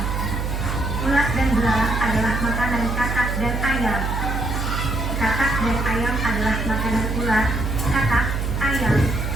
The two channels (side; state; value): right; noise; hum, 1 dB below the sound